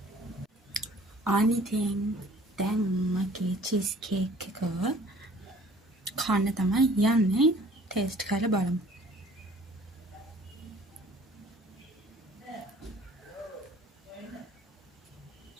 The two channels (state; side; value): normal; both; correlation 0.53